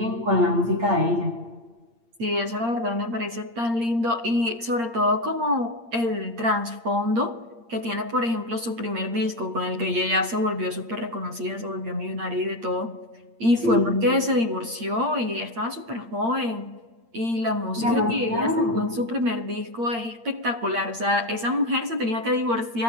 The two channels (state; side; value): late; left; 8.7 ms